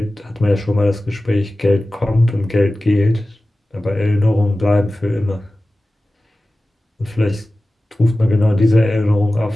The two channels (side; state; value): both; normal; correlation 0.96